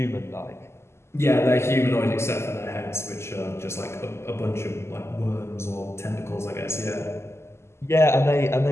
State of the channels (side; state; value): right; late; 0.13 ms